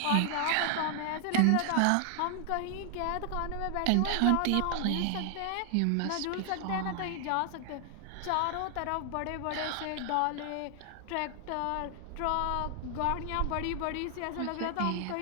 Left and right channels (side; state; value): both; different; correlation 0.00